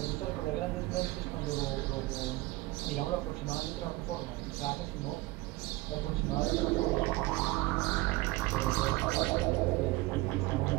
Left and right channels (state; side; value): quieter; left; 20.1 dB